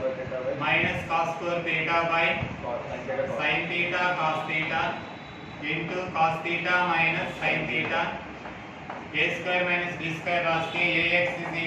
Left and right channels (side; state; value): both; identical; correlation 1.00